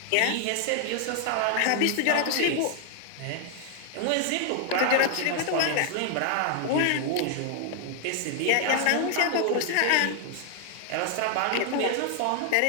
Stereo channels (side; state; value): both; different; correlation 0.00